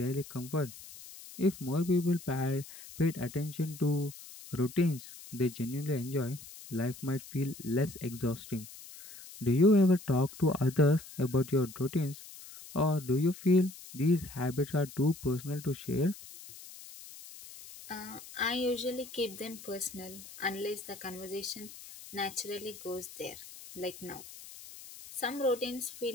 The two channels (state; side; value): noise; left; hiss, 16 dB below the sound